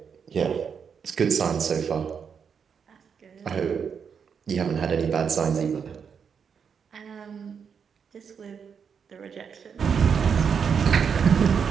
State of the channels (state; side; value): quieter; left; 6.7 dB